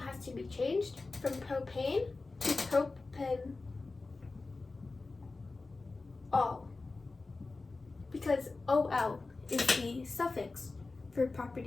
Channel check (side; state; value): right; quieter; 3.6 dB